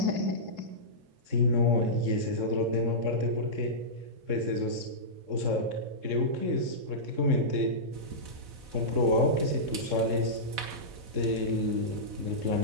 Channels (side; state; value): left; late; 4.0 ms